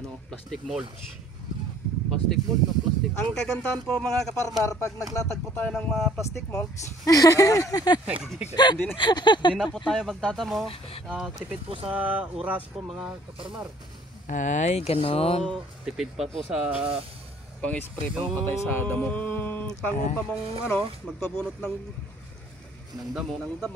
plastic mulch. Plastic mulch na plastic. Ang kagandahan po mga kaparmar, pag naglatag po tayo ng mga plastic molds, hindi na po tayo magtatamo. Tipid po sa oras po mga kaparmar. Ay, ganon. So, Tipid pa po sa pang-spray pang-patay sa damo. Pangupa mong magpabunot ng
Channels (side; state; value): both; normal; correlation 0.57